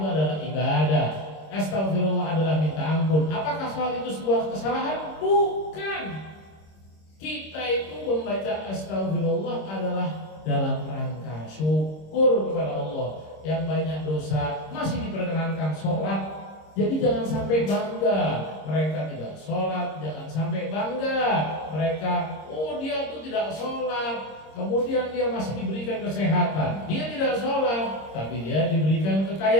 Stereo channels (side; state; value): right; late; 26 ms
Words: adalah ibadah. Astagfirullah adalah minta ampun. Apakah sholat itu sebuah kesalahan? Bukan. Kita itu membaca astagfirullah adalah dalam rangka syukur kepada Allah. Yang banyak dosa masih diperkenankan sholat. Jadi jangan sampai bangga mereka tidak sholat, jangan sampai bangga mereka, oh dia tuh tidak sholat, kemudian dia masih diberikan kesehatan, dia tidak sholat, tapi dia diberikan